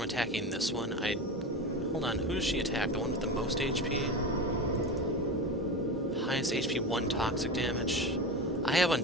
attacking this one, I'd... Hold on, who does she attack? The one with the most HP? Highest HP, 1 toxic damage. I have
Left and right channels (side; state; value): both; normal; correlation 0.24